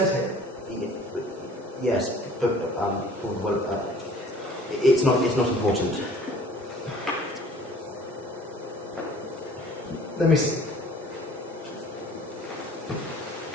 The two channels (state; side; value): normal; both; correlation 0.50